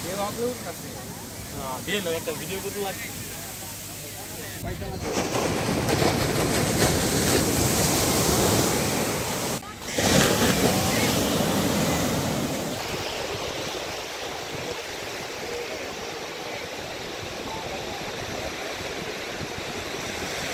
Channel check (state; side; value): identical; both; correlation 1.00